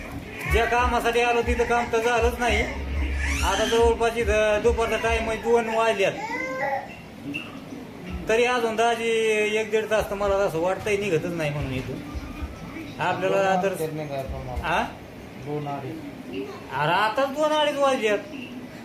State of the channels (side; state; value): both; identical; correlation 1.00